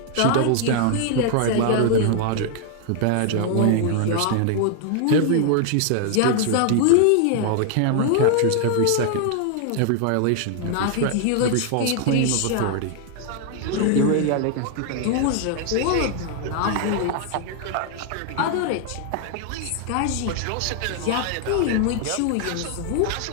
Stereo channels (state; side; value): different; both; correlation 0.00